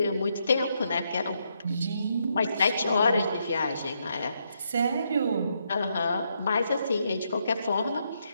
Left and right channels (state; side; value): inverted; both; correlation -0.78